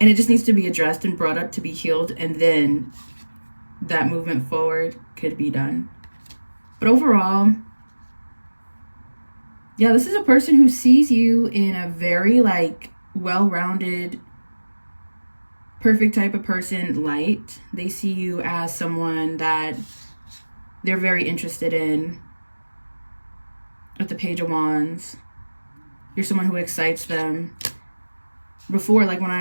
it just needs to be addressed and brought up to be healed, and then that movement forward could be done. But overall, yeah, this is a person who sees you in a very, like, well-rounded, perfect type of person light. They see you as someone that they're very interested in. With the Page of Wands, you're someone who excites them. Before, like when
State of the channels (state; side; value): inverted; both; correlation -1.00